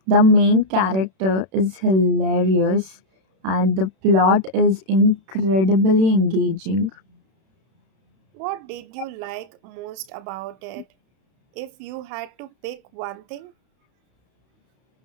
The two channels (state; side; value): late; left; 31 ms